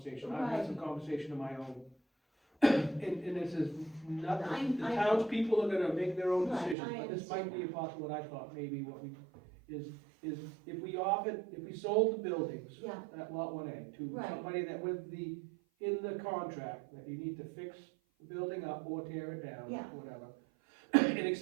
I've had some conversation of my own. And this is nothing, the I- townspeople are gonna make their own Right, decisions, I but this might be understand. possible, what I thought maybe what we, is if we sold the buildings, yeah, that lot 1A to Right. somebody that in the contract, that you need to fix the building up or tear it down, Yeah. whatever.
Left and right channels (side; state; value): left; drops out; at 6.8 s